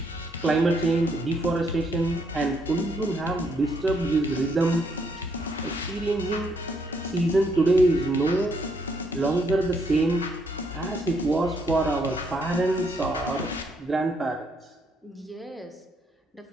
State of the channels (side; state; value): both; normal; correlation 0.72